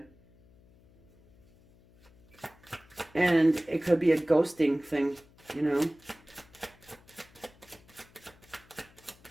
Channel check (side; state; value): left; noise; hum, 28 dB below the sound